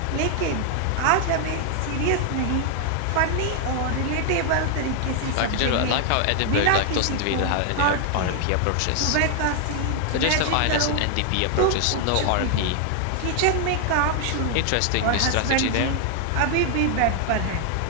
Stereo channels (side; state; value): both; different; correlation 0.00